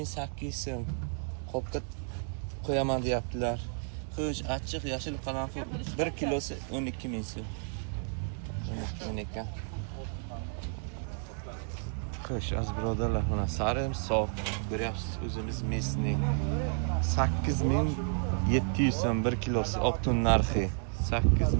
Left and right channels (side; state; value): left; silent; 56 dB below the other